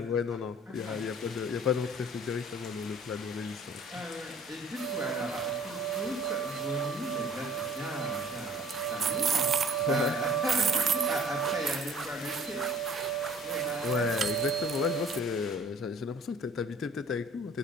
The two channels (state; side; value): normal; both; correlation 0.52